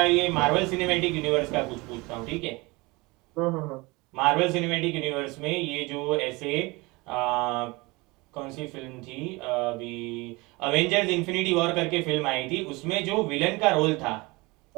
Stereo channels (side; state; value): left; quieter; 24.3 dB